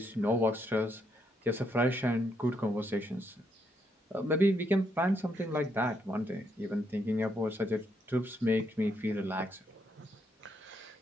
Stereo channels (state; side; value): normal; both; correlation 0.76